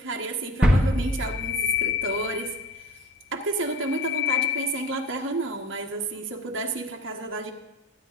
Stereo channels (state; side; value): normal; both; correlation 0.41